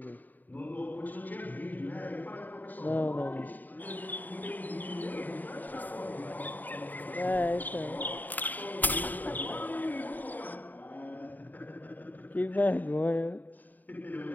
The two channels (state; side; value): late; right; 0.085 ms